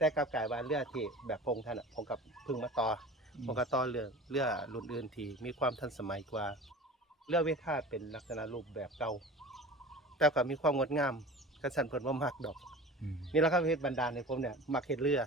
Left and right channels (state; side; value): normal; both; correlation 0.38